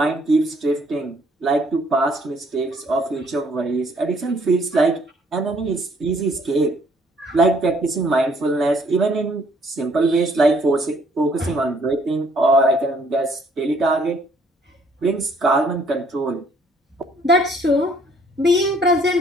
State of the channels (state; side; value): normal; both; correlation 0.63